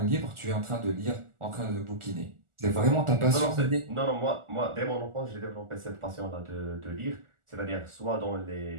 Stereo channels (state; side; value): late; left; 1.4 ms